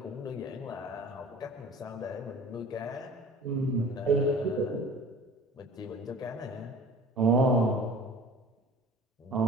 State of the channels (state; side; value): normal; both; correlation 0.43